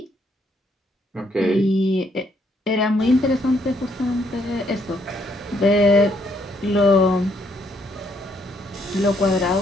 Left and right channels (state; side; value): normal; both; correlation 0.71